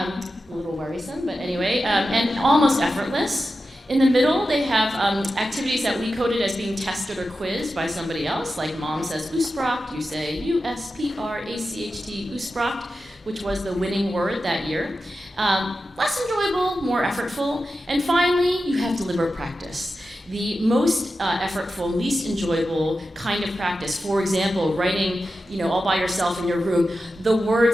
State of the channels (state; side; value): normal; both; correlation 0.91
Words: little worrisome, but anyway, and almost effortless. In the middle, they have activities that we coded as being tested or quizzed by somebody else, like mom says Uspracht, you say U-S-P-R-A-C-H-T, Uspracht, which was the winning word that year. Less enjoyable, more effortful, and finally, you have deliberate practice. The most effortful, least enjoyable kind of practice. For example, writing, all by yourself in your room, the